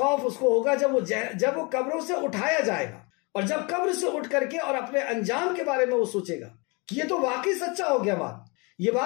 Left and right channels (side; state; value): right; quieter; 29.4 dB